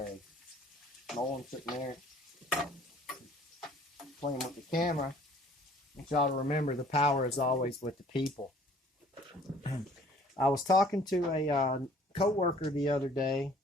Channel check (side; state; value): both; normal; correlation 0.55